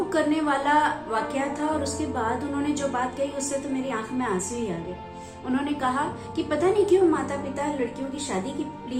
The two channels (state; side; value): identical; both; correlation 1.00